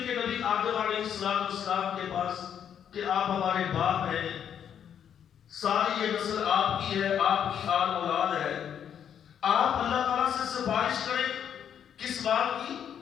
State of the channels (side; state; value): right; quieter; 8.8 dB